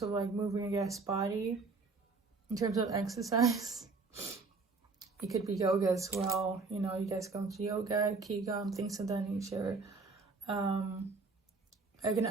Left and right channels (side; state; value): left; quieter; 4.2 dB